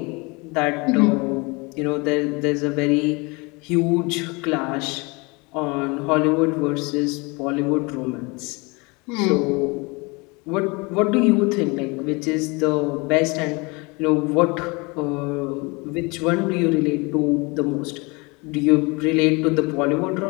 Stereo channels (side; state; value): right; quieter; 27.4 dB